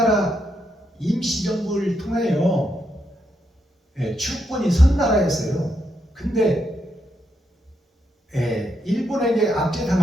임시정부를 통하여 주권이 선 나라였어요. 근데 일본에게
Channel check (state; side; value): normal; both; correlation 0.80